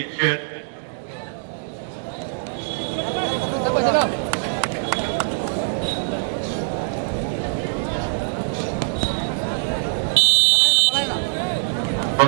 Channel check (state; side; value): silent; left; digital silence